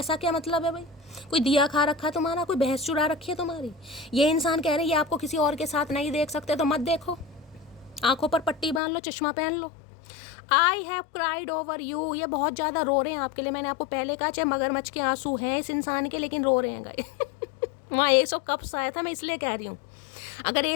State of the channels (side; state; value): right; drops out; at 8.8 s